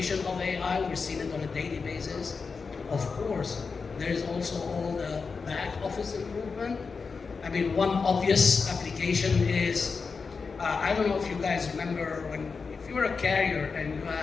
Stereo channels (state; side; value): quieter; right; 4.9 dB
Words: of AI, we're seeing it on a daily basis. Of course, there's also all the back office improvement. I mean, one obvious application is, I don't know if you guys remember if you're a carrier and you